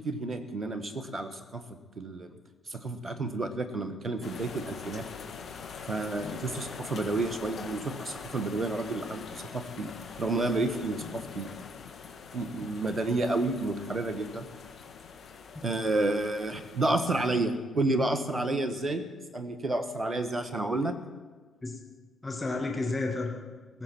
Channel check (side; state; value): both; normal; correlation 0.71